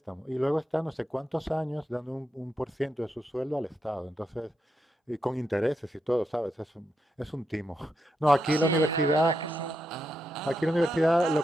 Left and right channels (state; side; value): normal; both; correlation 0.84